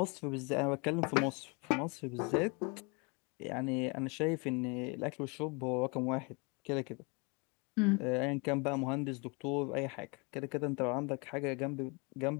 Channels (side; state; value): right; quieter; 30.9 dB